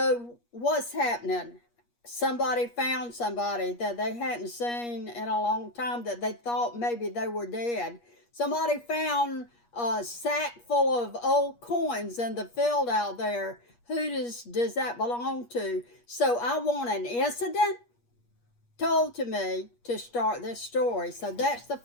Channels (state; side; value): late; right; 8.4 ms